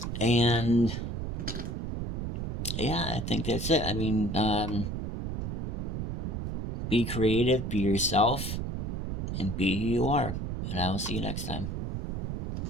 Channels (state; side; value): noise; right; rumble, 3 dB below the sound